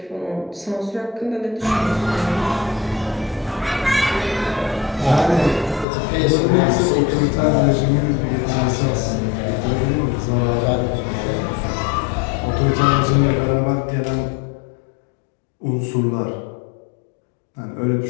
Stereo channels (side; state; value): right; drops out; at 5.9 s